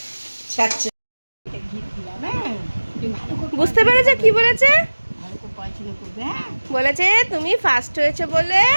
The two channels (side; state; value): both; inverted; correlation -1.00